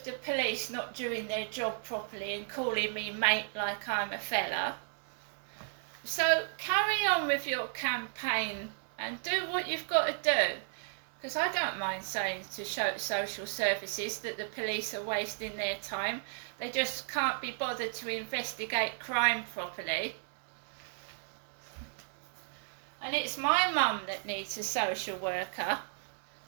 the police not doing their job properly and calling me mate like I'm a fella. So carry on with your campaign and do what you've got to do. Because I don't mind saying to social services that the police are wasting their time. They just can't be bothered to investigate crime properly. And it's my mum that needs a social worker,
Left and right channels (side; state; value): left; silent; digital silence